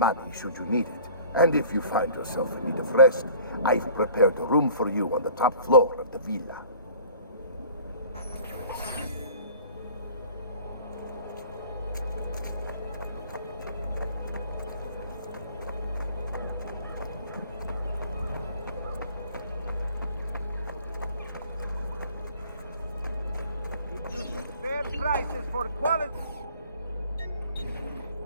should you need it. And if you find yourself in need of rest, I've prepared a room for you on the top floor of the villa. Fair prices for quality.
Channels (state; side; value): inverted; both; correlation -0.48